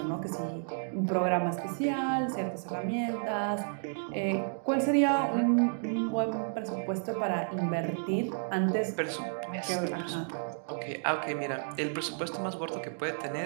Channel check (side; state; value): left; silent; digital silence